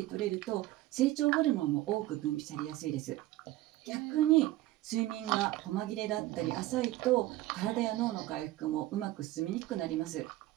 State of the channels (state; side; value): quieter; left; 16.4 dB